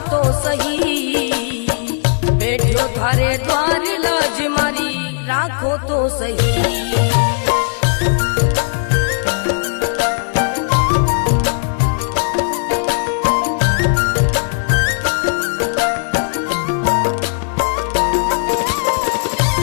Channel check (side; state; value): right; silent; digital silence